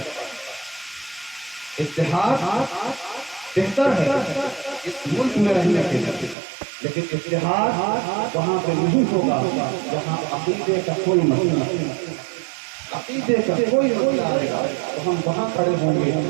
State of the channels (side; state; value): left; drops out; at 6.4 s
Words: اتحاد بہتر ہے اس ملک میں رہنے کے لیے، لیکن اتحاد وہاں پہ نہیں ہوگا جہاں عقیدے کا کوئی مسئلہ نہیں، عقیدے کا کوئی مسئلہ آئے گا تو ہم وہاں کھڑے ہوں گے